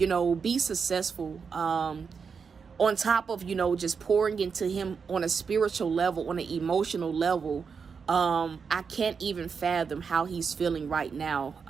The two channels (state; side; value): quieter; left; 5.8 dB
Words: be successful. On top of, just pouring into him on a spiritual level, on an emotional level. I can't even fathom how he's feeling right